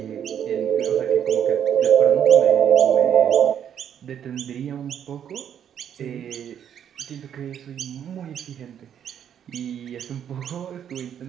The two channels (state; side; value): quieter; left; 9.1 dB